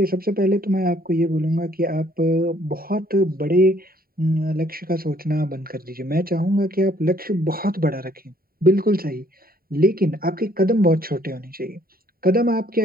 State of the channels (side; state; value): left; late; 0.43 ms